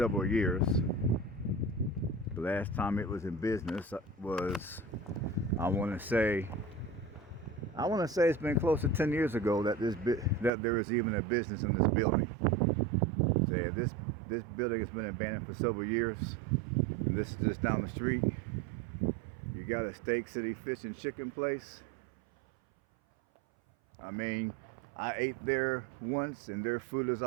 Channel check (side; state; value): left; drops out; at 10.5 s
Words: years. The last time it was in business was, I want to say it's been close to 10 years ago that there was even a business in this building. So yeah, this building has been abandoned for several years. And this is just down the street. You got a Steak City Fish and Chicken place. I mean, I ate there once and their food is